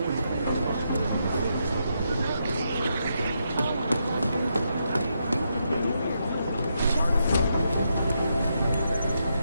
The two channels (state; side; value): inverted; both; correlation -0.81